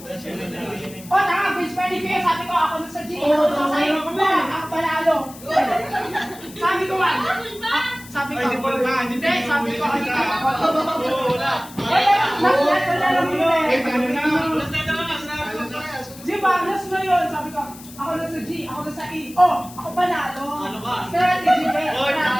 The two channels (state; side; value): noise; left; hiss, 18 dB below the sound